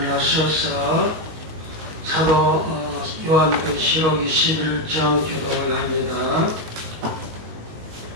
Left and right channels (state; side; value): late; left; 19 ms